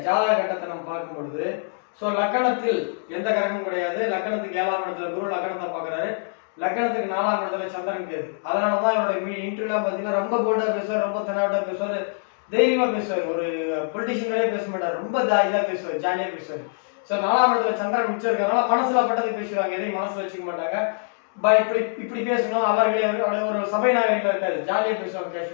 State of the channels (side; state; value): right; silent; digital silence